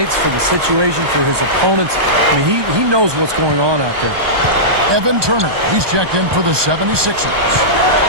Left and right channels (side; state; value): left; late; 1.2 ms